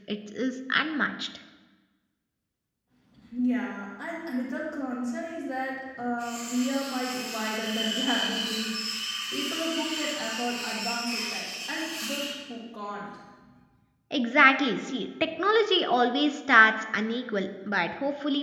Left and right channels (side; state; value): both; identical; correlation 1.00